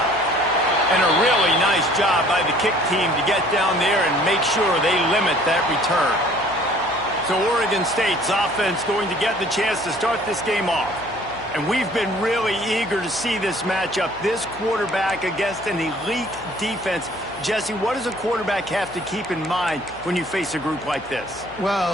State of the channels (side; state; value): left; noise; hum, 21 dB below the sound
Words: And a really nice job by the kick team to get down there and make sure they limit that return. So Oregon State's offense going to get the chance to start this game off. And we've been really eager to see this matchup, this quarterback against an elite defense. Jesse, what does a quarterback have to keep in mind when you face a group like this?